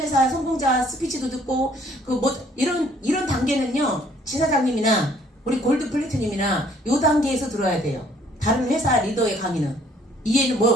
성공자 스피치도 듣고 이런 단계는요 지사장님이나 우리 골드 플래티넘이나 요 단계에서 들어야 돼요. 다른 회사 리더의 강의는 이해는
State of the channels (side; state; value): both; normal; correlation 0.61